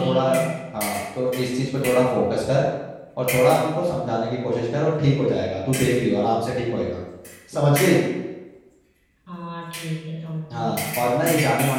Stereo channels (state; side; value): identical; both; correlation 1.00